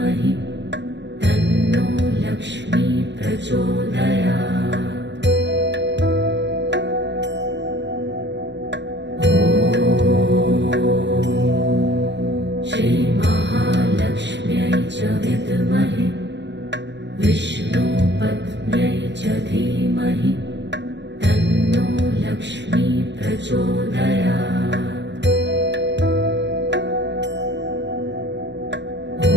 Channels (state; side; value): late; left; 0.52 ms